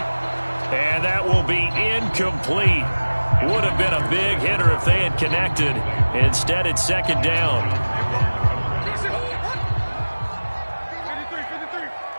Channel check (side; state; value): both; inverted; correlation -1.00